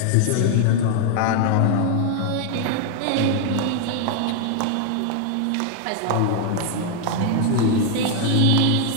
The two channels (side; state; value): both; different; correlation 0.00